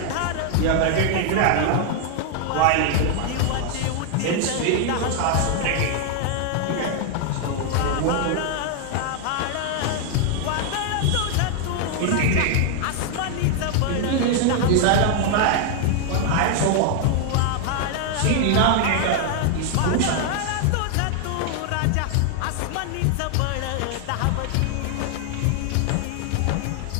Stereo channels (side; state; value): both; different; correlation 0.00